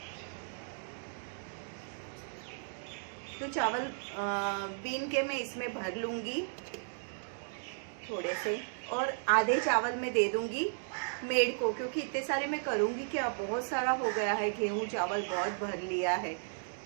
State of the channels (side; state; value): left; silent; digital silence